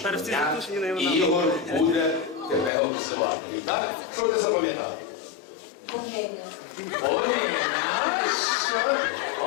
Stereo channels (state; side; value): drops out; right; at 2.7 s